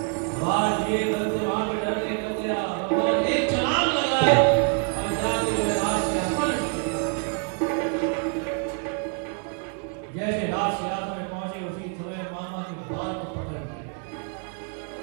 आवाज दिए, कंस वहां पे डरने लग गया। भगवान एक छलांग लगाए और जाके राज सिंहासन जैसे राज सिंहासन में पहुंचे, उसी समय मामा के बाल को पकड़ लिए।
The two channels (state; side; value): quieter; left; 38.9 dB